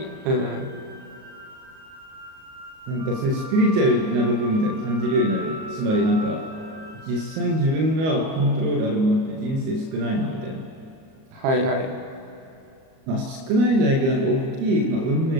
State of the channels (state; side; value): late; left; 37 ms